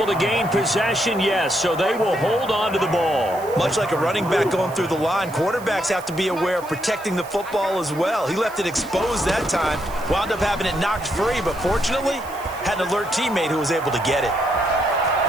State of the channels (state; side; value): noise; right; hiss, 19 dB below the sound